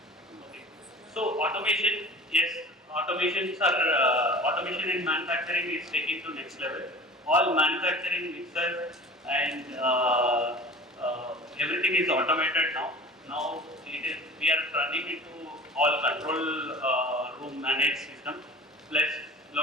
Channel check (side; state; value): both; normal; correlation 0.41